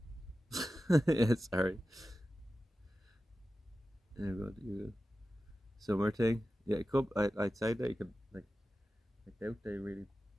Yeah, sorry. You're good. You're good. Summer thing. Yeah, it could. I'd say that you could like. I doubt they really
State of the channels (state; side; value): normal; both; correlation 0.94